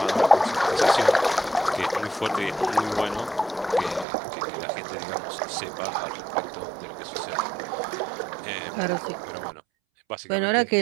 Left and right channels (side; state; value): left; drops out; at 4.0 s